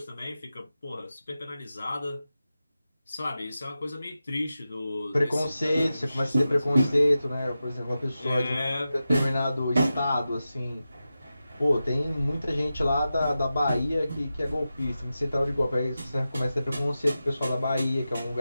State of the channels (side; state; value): both; inverted; correlation -0.92